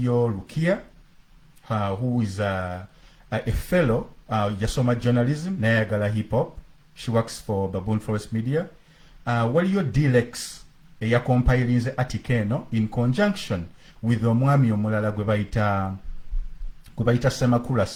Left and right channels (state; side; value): identical; both; correlation 1.00